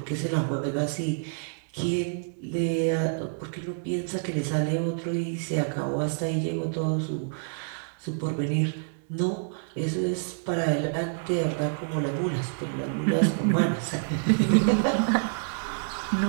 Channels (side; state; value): left; silent; digital silence